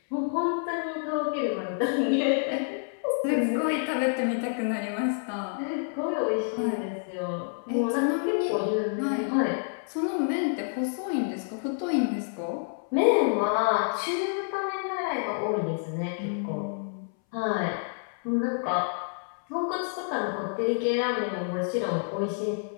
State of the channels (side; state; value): right; silent; 59 dB below the other